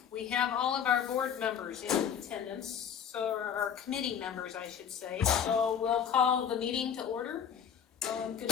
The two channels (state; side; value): quieter; right; 8.1 dB